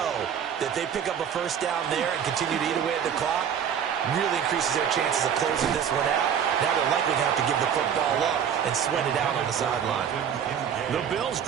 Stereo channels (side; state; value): left; quieter; 8.2 dB